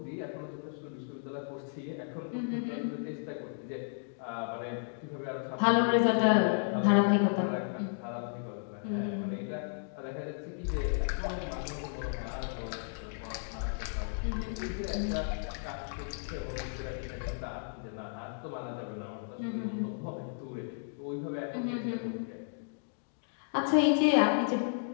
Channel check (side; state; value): right; silent; digital silence